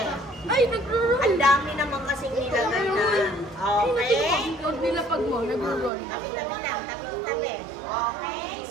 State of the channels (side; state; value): left; drops out; at 5.9 s